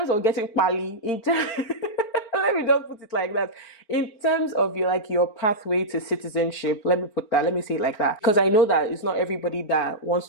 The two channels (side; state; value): right; late; 4.4 ms